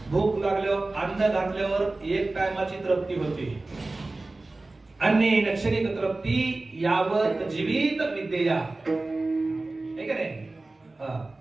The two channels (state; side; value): quieter; left; 3.1 dB